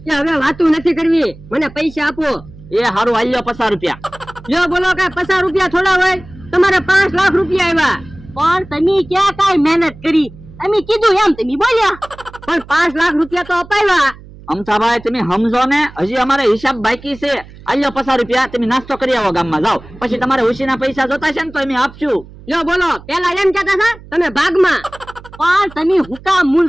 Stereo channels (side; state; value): right; noise; hum, 20 dB below the sound